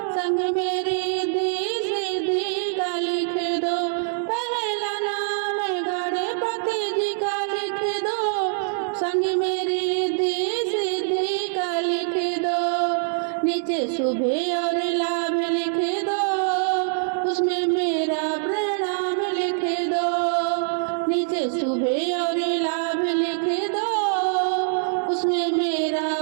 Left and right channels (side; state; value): left; silent; 63 dB below the other